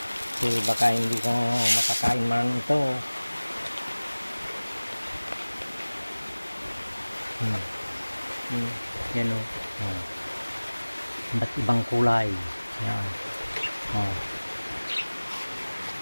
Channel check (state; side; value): inverted; both; correlation -1.00